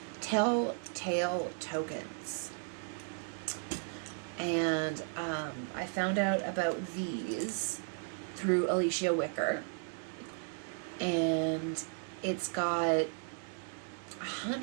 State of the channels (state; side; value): silent; left; 54 dB below the other